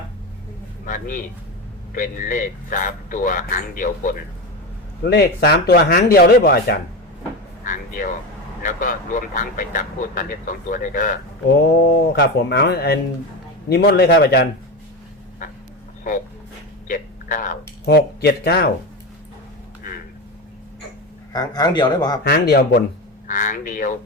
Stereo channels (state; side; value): normal; both; correlation 0.20